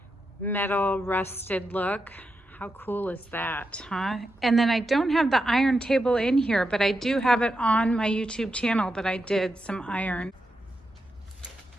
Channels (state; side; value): normal; both; correlation 0.86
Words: metal rusted look. How cool is that, huh? And then I don't have the iron table in here, but I do have it on my YouTube channel that I did some iron.